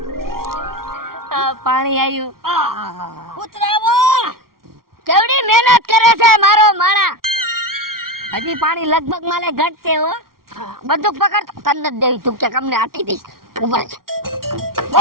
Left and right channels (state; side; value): late; left; 0.93 ms